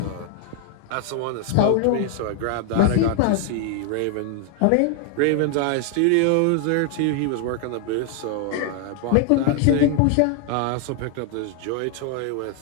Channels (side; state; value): both; different; correlation 0.00